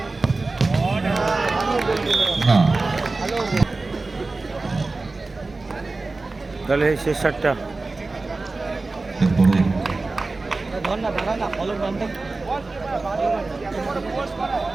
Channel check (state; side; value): quieter; left; 3.5 dB